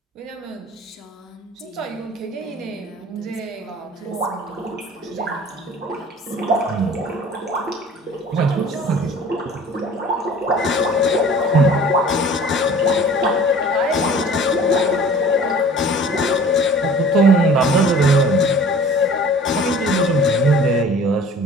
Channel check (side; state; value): both; normal; correlation 0.47